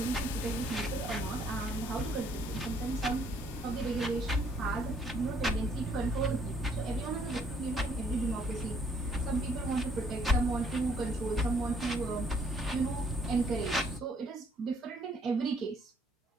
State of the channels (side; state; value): both; normal; correlation 0.65